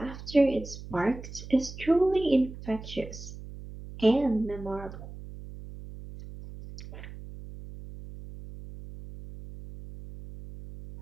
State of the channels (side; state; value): right; noise; hum, 13 dB below the sound